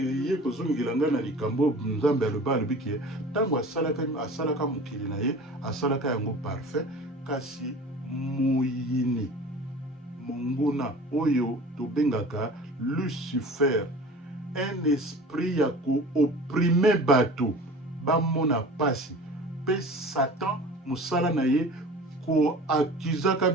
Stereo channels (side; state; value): both; normal; correlation 0.40